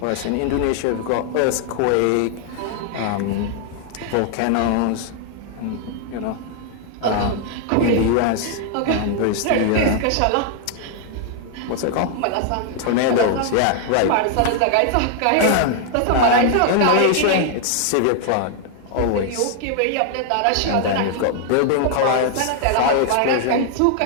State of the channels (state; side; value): different; both; correlation 0.00